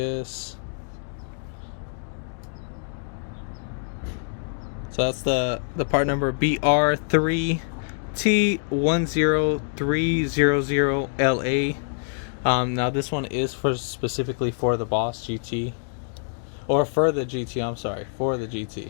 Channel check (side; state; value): right; silent; digital silence